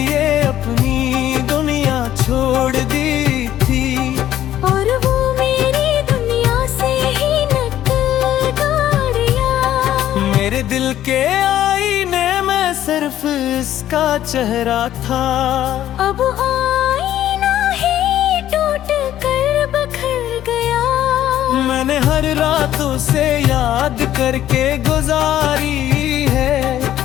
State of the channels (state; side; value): quieter; right; 12.2 dB